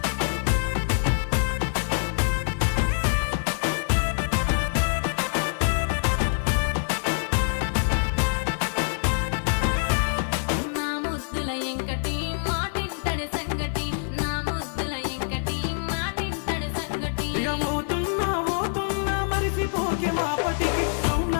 నా ముద్దుల ఎంకటి మాటింటడి సంగటి నా ముద్దుల ఎంకటి మాటింటడి సంగటి ఇక పోతున్నా మరిసిపోకే మాపటికి రౌండ్ల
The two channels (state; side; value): silent; right; digital silence